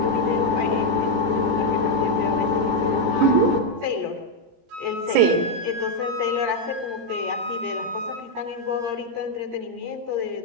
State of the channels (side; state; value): left; late; 17 ms